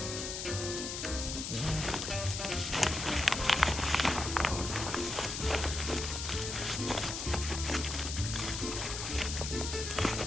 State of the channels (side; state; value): left; noise; hiss, 4 dB below the sound